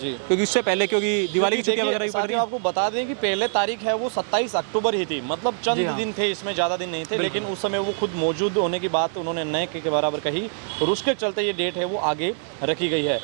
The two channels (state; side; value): silent; left; digital silence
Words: क्योंकि उससे पहले, क्योंकि दिवाली की छुट्टियां वगैरह भी पड़ रही साथियों हैं। आपको बता दें कि पहले तारीख है वो 27 अक्टूबर ही थी, मतलब चंद दिन थे, इसमें ज़्यादा दिन नहीं थे, लेकिन उस समय वो खुद मौजूद होने की बात उन्होंने नए के बराबर कही और उसके चलते ये डेट है वो आगे रखी गई है।